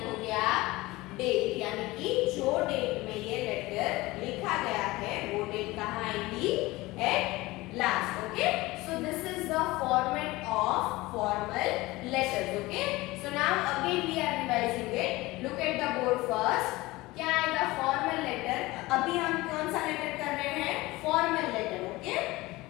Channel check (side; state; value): right; quieter; 20.2 dB